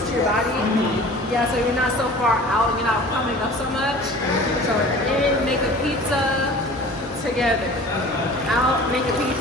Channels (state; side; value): normal; both; correlation 0.43